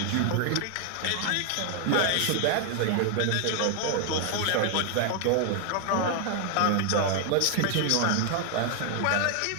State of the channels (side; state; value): both; different; correlation 0.00